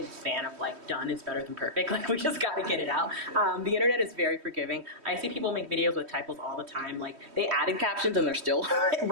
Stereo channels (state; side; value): late; left; 3.1 ms